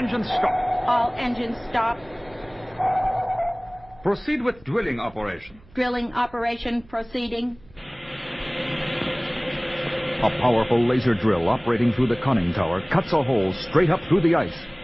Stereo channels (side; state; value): right; noise; hum, 25 dB below the sound